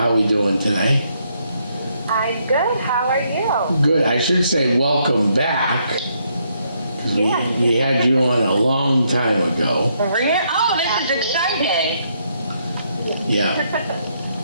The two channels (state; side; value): inverted; both; correlation -0.74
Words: are we doing today? I'm good. How are you? Good. I should say welcome back. Yeah. We had you on a long time ago. Oh, this is exciting. Yeah.